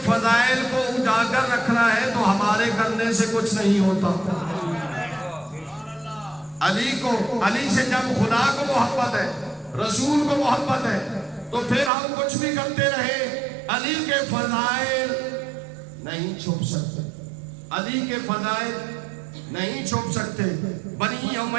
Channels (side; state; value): left; drops out; at 11.9 s